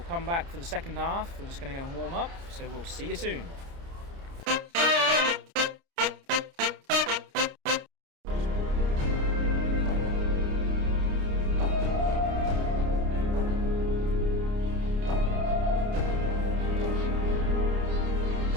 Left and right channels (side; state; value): left; late; 29 ms